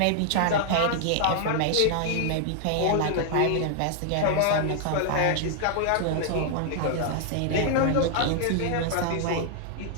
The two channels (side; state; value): both; different; correlation -0.01